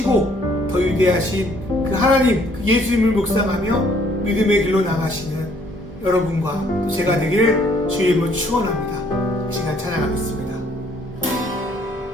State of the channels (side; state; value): both; normal; correlation 0.63